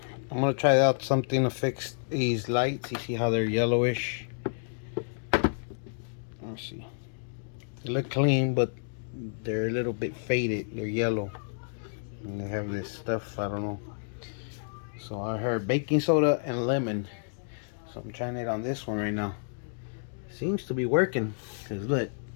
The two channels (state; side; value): silent; right; digital silence